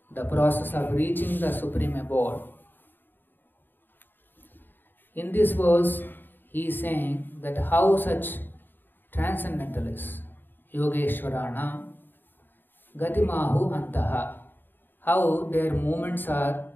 the process of reaching the Supreme Abode, in this verse he is saying that how such transcendentalists, Yogeshwarana, Gatimahu Antaha, how their movements are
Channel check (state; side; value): late; right; 0.093 ms